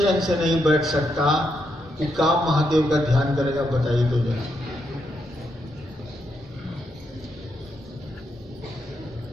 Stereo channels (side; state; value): both; normal; correlation 0.80